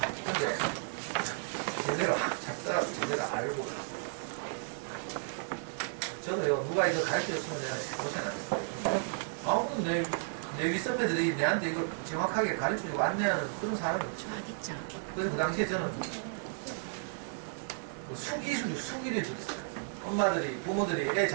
근데 제대로 확 잡더라도 제대로 알고 저도요 누가 이거 가르쳐줬으면 내가 고생하겠어요. 아무튼 내 윗선배들이 내한테 이걸 정확하게 가르쳐주고 안내하는 그런 사람이 없죠. 그래서 그 당시에 저는 수기를 줬어요. 엄마들이, 부모들이 애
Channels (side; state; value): left; silent; digital silence